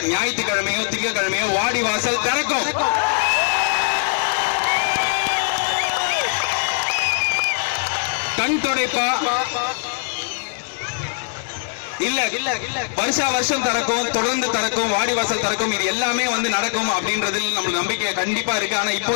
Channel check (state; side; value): silent; right; 65 dB below the other